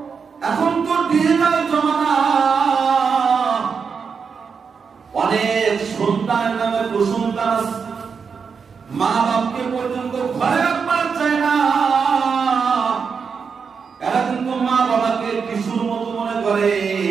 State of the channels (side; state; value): left; quieter; 5.8 dB